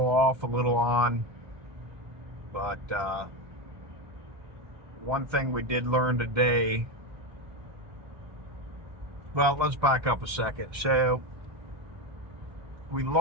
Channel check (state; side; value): late; left; 1.3 ms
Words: off, a little on, but one thing we did learn today. Well, let's back up a second. So we